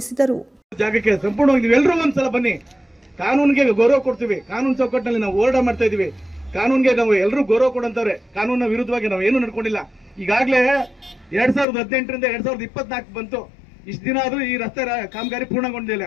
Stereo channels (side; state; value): right; drops out; at 11.7 s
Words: ಜಾಗಕ್ಕೆ ಸಂಪೂರ್ಣವಾಗಿ ನೀವೆಲ್ಲರೂ ಒಂದ್ಸಲ ಬನ್ನಿ. ಕಾನೂನಿಗೆ ಗೌರವ ಕೊಡ್ತೀವಿ. ಕಾನೂನು ಚೌಕಟ್ಟಿನಲ್ಲಿ ನಾವು ಹೋರಾಟ ಮಾಡ್ತಾ ಇದೀವಿ. ಕಾನೂನಿಗೆ ನಾವು ಎಲ್ಲರೂ ಗೌರವ ಕೊಡಂತವ್ರೆ. ಕಾನೂನಿನ ವಿರುದ್ಧವಾಗಿ ನಾವು ಏನು ನಡ್ಕೊಂಡಿಲ್ಲ. ಈಗಾಗಲೇ 2018ರಿಂದ 2024 ಬಂತು. ಇಷ್ಟು ದಿನ ಆದ್ರೂ ಈ ರಸ್ತೆ ಕಾಮಗಾರಿ